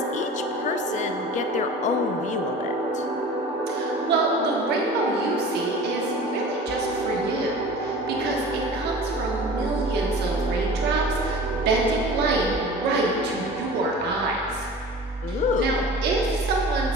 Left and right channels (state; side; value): normal; both; correlation 0.39